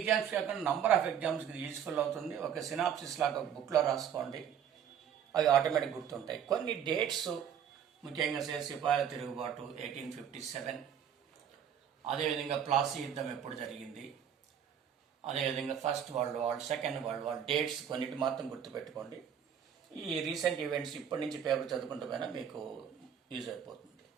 కాకుండా నంబర్ ఆఫ్ ఎగ్జామ్స్కి ఇది యూస్ఫుల్ అవుతుంది. ఒక సినాప్సిస్ లాగా బుక్లో రాసుకోండి, అవి ఆటోమేటిక్ గుర్తుంటాయి. కొన్ని డేట్స్ ముఖ్యంగా సిపాయిల తిరుగుబాటు 1857, అదేవిధంగా ప్లాసీ యుద్ధం ఎప్పుడు జరిగింది, అదేవిధంగా first world war, second world war, dates కొన్నిటి మాత్రం గుర్తుపెట్టుకోండి. ఈ రీసెంట్ ఈవెంట్స్ ఇప్పటి నుంచి పేపర్ చదువుకుంటూ పోయినా మీకు యూజ్ అయిపోతుంది.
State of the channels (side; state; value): left; quieter; 8.7 dB